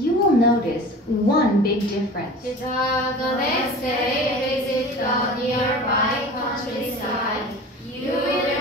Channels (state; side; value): normal; both; correlation 0.38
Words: will notice one big difference. 시작. The next day, visit the nearby countryside. You